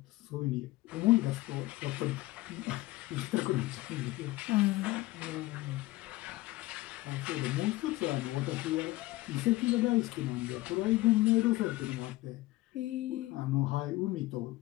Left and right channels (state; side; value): quieter; right; 18.6 dB